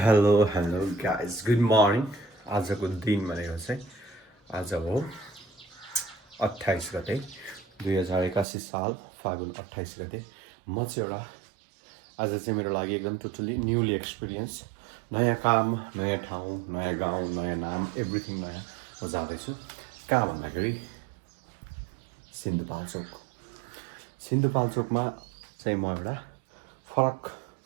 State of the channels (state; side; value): drops out; left; at 8.5 s